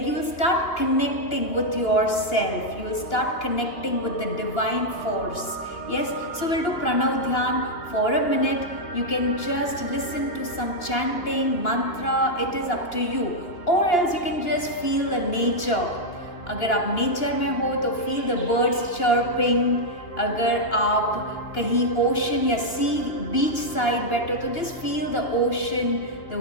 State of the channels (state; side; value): late; right; 2.9 ms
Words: you will start connecting with your self. You will start connecting with the divine force. Yes, so we'll do Pranav Dhyan for a minute. You can just listen to some chanting, mantra, it is up to you. Or else you can just feel the nature. अगर आप नेचर में हो तो feel the birds chirping. अगर आप कहीं ओशन या सी beach side बैठे हो तो just feel the ocean,